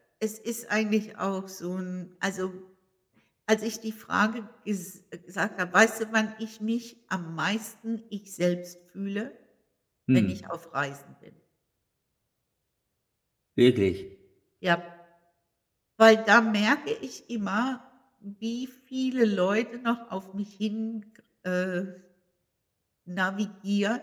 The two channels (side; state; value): both; identical; correlation 1.00